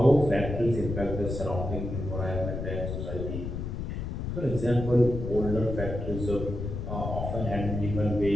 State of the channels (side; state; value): left; noise; rumble, 5 dB below the sound